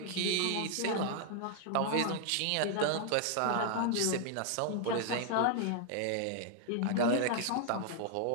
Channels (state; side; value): different; both; correlation 0.00